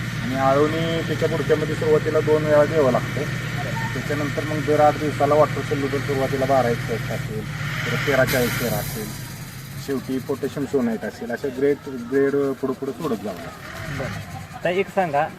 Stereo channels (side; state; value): both; identical; correlation 1.00